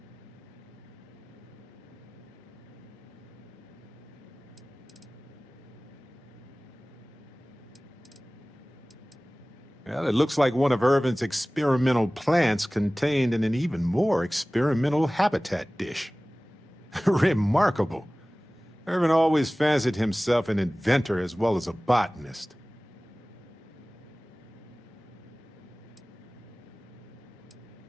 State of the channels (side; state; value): both; normal; correlation 0.98